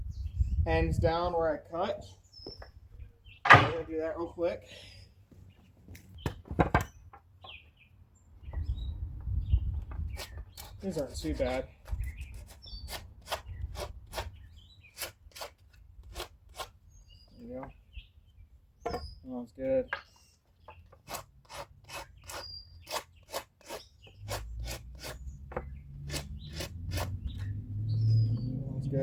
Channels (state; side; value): identical; both; correlation 1.00